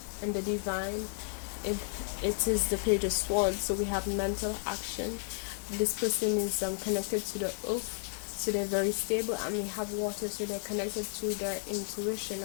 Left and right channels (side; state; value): right; silent; 56 dB below the other